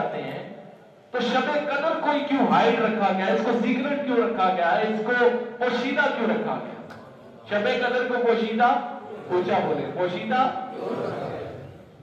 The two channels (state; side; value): identical; both; correlation 1.00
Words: ہیں، تو شب قدر کو کیوں ہائڈ رکھا گیا، اس کو سیکرٹ کیوں رکھا گیا، اس کو پوشیدہ کیوں رکھا گیا. شب قدر کو پوشیدہ، پوچھا بولے پوشیدہ،